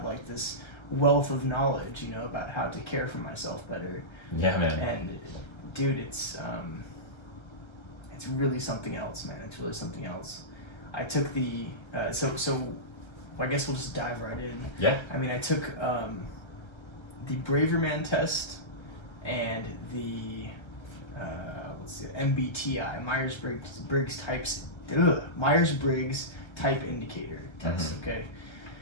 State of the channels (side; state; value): right; late; 1.3 ms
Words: like this wealth of knowledge, you know, about how to care for myself better. Yeah, man. And dude, it's really something else, man. It's really something else. I took the so I guess we'll just dive right in. Yeah. I mean, I took the Braver Man test and the MBTI, Myers-Briggs Type Indicator test. Mm-hmm. Okay.